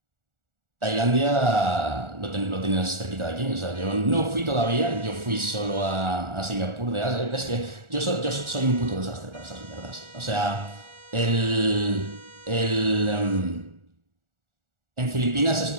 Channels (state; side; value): late; left; 1.4 ms